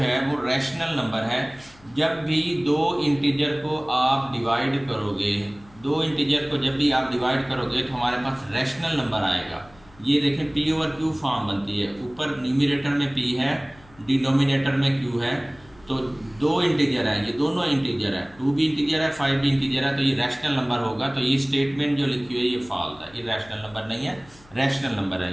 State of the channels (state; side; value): noise; left; hum, 26 dB below the sound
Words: वो रैशनल नंबर है. जब भी दो इंटीजर को आप डिवाइड करोगे, दो इंटीजर को जब भी आप डिवाइड करोगे तो हमारे पास रैशनल नंबर आएगा. ये देखें P/Q फॉर्म बनती है. ऊपर न्यूमरेटर में P है, डिनोमिनेटर में Q है. तो दो इंटीजर है, ये दोनों इंटीजर है. 2 भी इंटीजर है, 5 भी इंटीजर है. तो ये रैशनल नंबर होगा. तो ये स्टेटमेंट जो लिखी हुई है ये फॉल्स है. ये रैशनल नंबर नहीं है, रैशनल नंबर